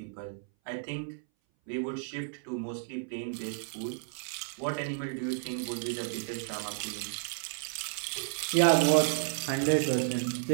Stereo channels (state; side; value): silent; left; 56 dB below the other